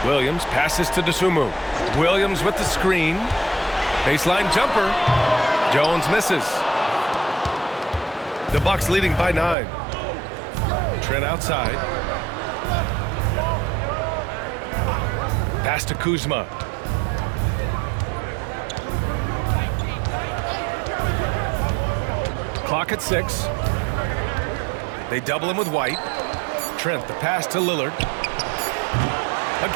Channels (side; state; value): left; drops out; at 9.6 s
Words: Williams passes to Dosunmu. Williams with the screen. Baseline jumper. Jones misses. The Bucks leading by 9. Trent outside. Pass to Kuzma. Clock at 6. They double him with White. Trent, the pass to Lillard.